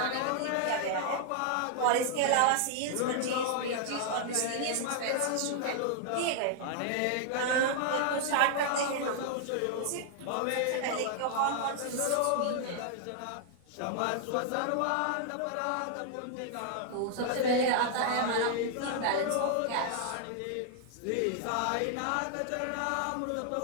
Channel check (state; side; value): different; both; correlation 0.00